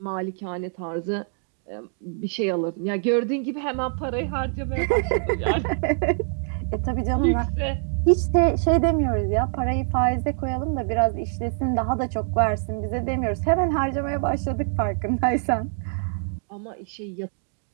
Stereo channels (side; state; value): left; silent; 62 dB below the other